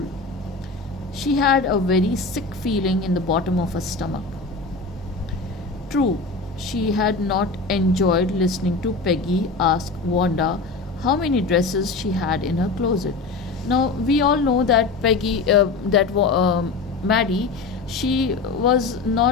She had a very sick feeling in the bottom of her stomach. True, she had not enjoyed listening to Peggy ask Wanda how many dresses she had in her closet. Now we all know that Maddie, she was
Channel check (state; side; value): quieter; right; 4.0 dB